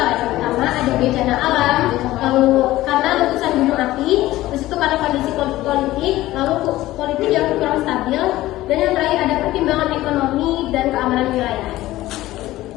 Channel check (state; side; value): quieter; right; 16.3 dB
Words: Yang pertama ada bencana alam, lalu karena letusan gunung api, terus itu karena kondisi politik, lalu politik yang kurang stabil, dan yang terakhir ada pertimbangan ekonomi dan keamanan wilayah.